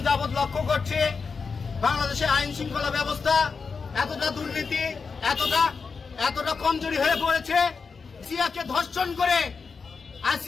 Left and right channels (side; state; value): right; quieter; 5.1 dB